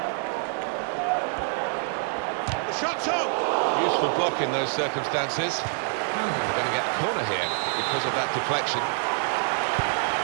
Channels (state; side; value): silent; left; 55 dB below the other